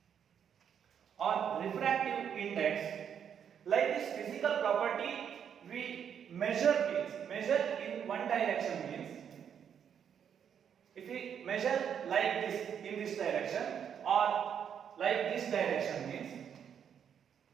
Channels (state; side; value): quieter; left; 8.2 dB